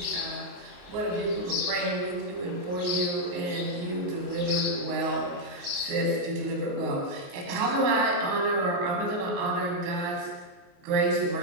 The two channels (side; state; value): left; late; 28 ms